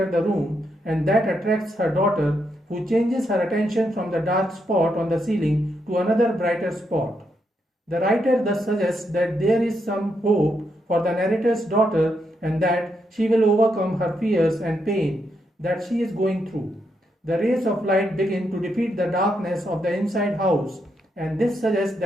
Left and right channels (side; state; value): both; normal; correlation 0.80